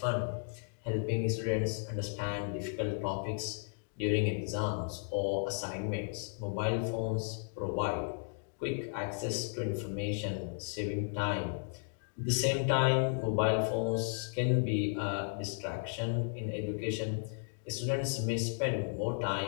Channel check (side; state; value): right; silent; digital silence